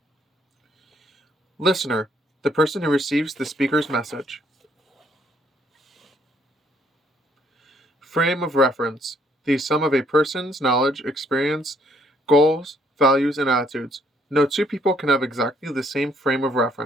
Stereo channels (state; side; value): normal; both; correlation 0.67